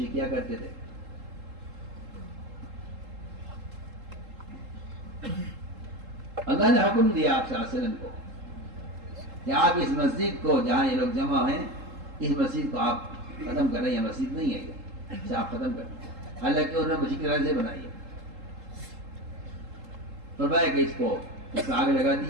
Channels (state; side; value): late; left; 3.7 ms